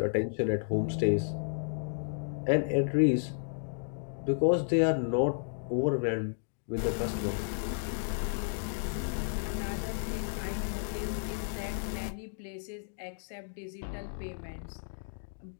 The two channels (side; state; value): right; silent; digital silence